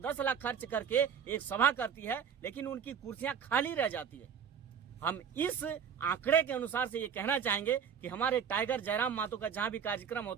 लाख खर्च करके एक सभा करती है, लेकिन उनकी कुर्सियां खाली रह जाती है। हम इस आंकड़े के अनुसार से ये कहना चाहेंगे कि हमारे टाइगर जयराम मातो का जहां भी कार्यक्रम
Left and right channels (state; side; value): quieter; left; 7.5 dB